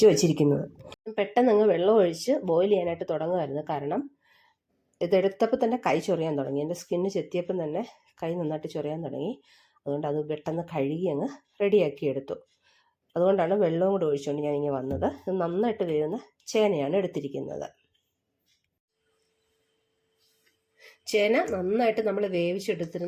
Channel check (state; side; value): identical; both; correlation 1.00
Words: വെച്ചിരിക്കുന്നത്. പെട്ടെന്ന് അങ്ങ് വെള്ളം ഒഴിച്ച് ബോയിൽ ചെയ്യാനായിട്ട് തുടങ്ങുമായിരുന്നു. കാരണം ഇതെടുത്തപ്പോൾ തന്നെ കൈ ചൊറിയാൻ തുടങ്ങി. എൻ്റെ സ്കിന്ന് ചെത്തിയപ്പം തന്നെ കൈ നന്നായിട്ട് ചൊറിയാൻ തുടങ്ങി. അതുകൊണ്ട് അത് പെട്ടെന്ന് കഴുകി അങ്ങ് റെഡിയാക്കി എടുത്തു. അതുകൊണ്ടാണ് വെള്ളവും കൂടെ ഒഴിച്ചുകൊണ്ട് ഞാനിങ്ങനെ വന്നത്. ഇത് നന്നായിട്ട് വേവുന്ന ചേനയാണ് എടുത്തിരിക്കുന്നത്. ചേന നന്നായിട്ട് നമ്മൾ